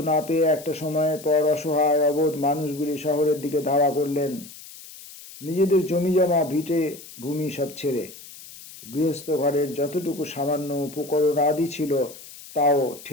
না পেয়ে একটা সময়ের পর অসহায় অবোধ মানুষগুলি শহরের দিকে ধাওয়া করলেন, নিজেদের জমিজমা ভিটে ভূমি সব ছেড়ে। গৃহস্থ ঘরের যতটুকু সামান্য উপকরণ আদি ছিল তাও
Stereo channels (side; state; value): left; noise; hiss, 17 dB below the sound